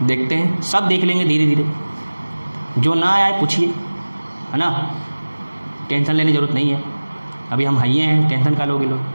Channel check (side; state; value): both; inverted; correlation -1.00